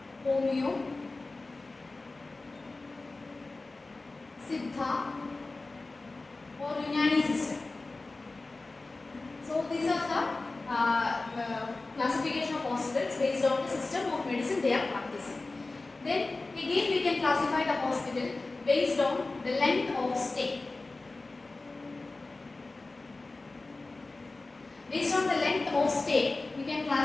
Homeo, Siddha or Unani system. So these are the classification of hospitals based on the system of medicine they are practicing. Then again we can classify the hospital based on the length of stay. Based on the length of stay, we can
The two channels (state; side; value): quieter; right; 3.3 dB